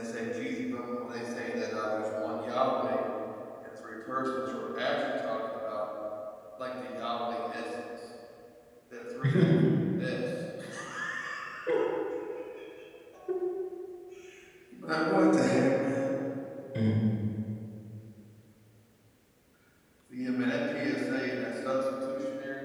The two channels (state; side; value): identical; both; correlation 1.00